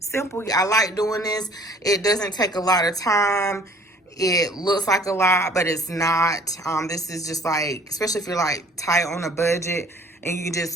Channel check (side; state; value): both; normal; correlation 0.54